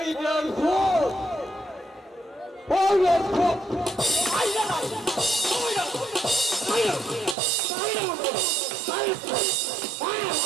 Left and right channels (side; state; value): left; drops out; at 7.4 s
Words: রেল ফোন, ওই রেল ফোন মাইরা না, মাইরা মাইরা